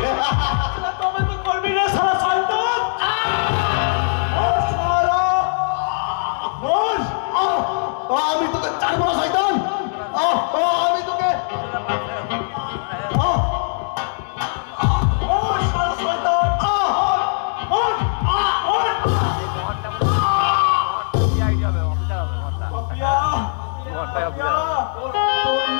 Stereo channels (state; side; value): silent; right; digital silence